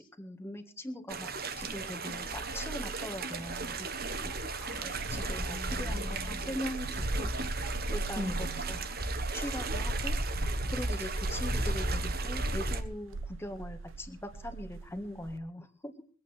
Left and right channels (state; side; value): normal; both; correlation 0.65